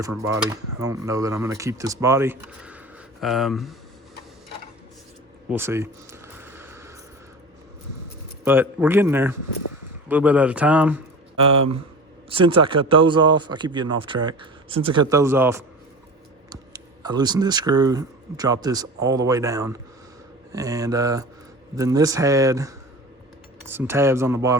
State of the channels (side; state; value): both; normal; correlation 0.35